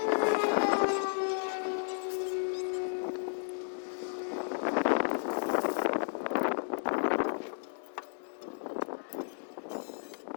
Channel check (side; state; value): right; silent; digital silence